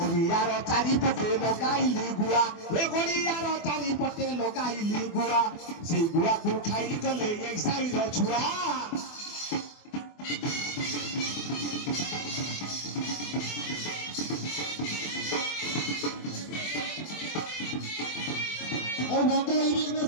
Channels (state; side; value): late; right; 24 ms